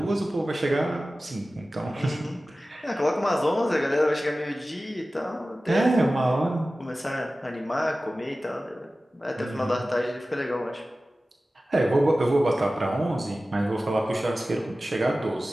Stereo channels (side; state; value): both; normal; correlation 0.96